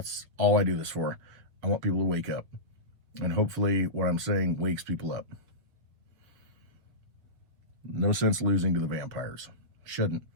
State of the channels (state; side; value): late; left; 7.5 ms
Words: all I do this for. I want people to wake up. And hopefully what I'm saying wakes people up. No sense losing to the vampires. Shouldn't,